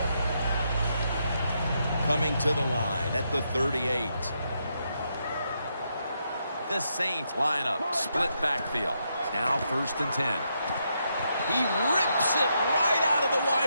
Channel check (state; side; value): inverted; both; correlation -0.80